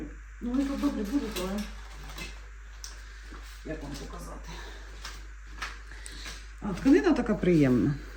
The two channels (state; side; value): identical; both; correlation 1.00